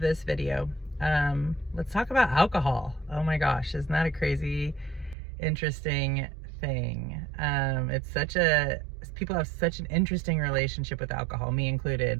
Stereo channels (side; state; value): left; drops out; at 5.2 s